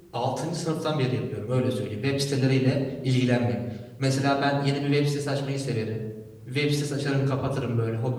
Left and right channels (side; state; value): both; identical; correlation 1.00